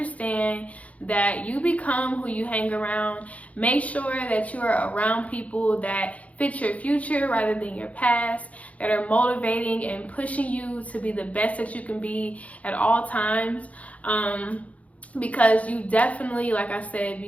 that you become who you hang around. Make sure that you are around people that fit your future rather than your past, that are motivating and pushing you to be the best that you can be at all times. Because you definitely, like I said,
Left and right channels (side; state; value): right; late; 0.067 ms